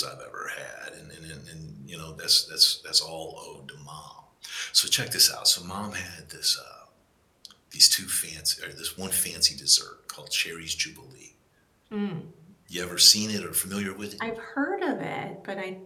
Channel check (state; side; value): identical; both; correlation 1.00